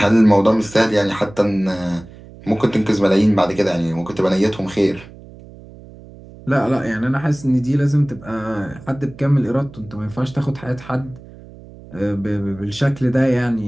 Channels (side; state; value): right; noise; hum, 19 dB below the sound